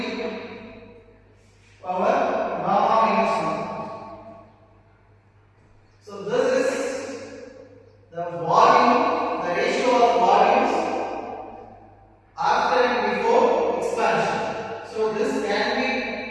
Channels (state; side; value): identical; both; correlation 1.00